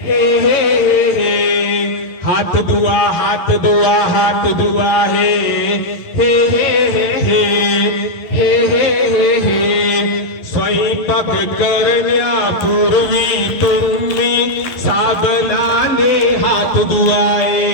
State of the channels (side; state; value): right; late; 12 ms